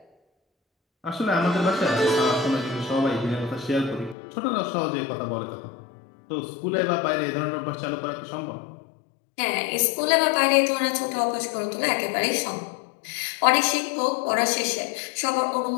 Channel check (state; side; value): drops out; right; at 4.2 s